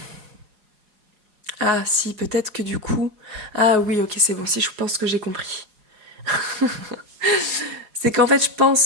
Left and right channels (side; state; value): left; late; 4.8 ms